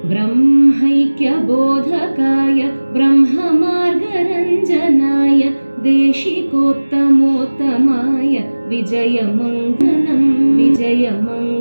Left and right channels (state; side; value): inverted; both; correlation -1.00